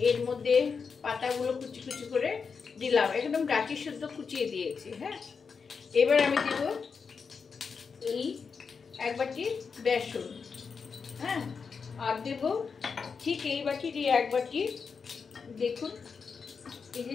এর মধ্যে পাতাগুলো কুচি কুচি করে দিলাম, একদম ডাঁটি শুদ্ধ কুচিয়ে দিয়েছি। এবার আমি দেব এই 1 বাটি বেসন, আর দেব ঠিক এই বাটির 1 বাটি, দেখুন এই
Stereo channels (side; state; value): right; quieter; 5.5 dB